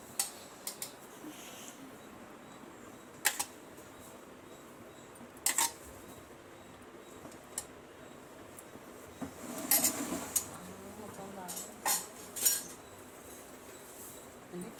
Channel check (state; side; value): identical; both; correlation 1.00